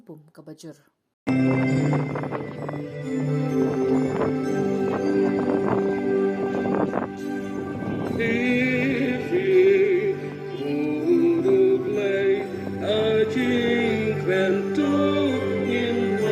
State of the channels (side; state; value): both; identical; correlation 1.00